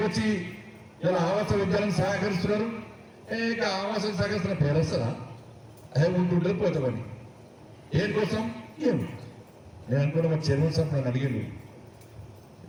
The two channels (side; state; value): both; identical; correlation 1.00